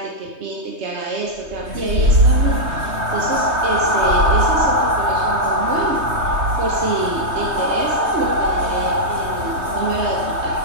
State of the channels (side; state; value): left; late; 3.2 ms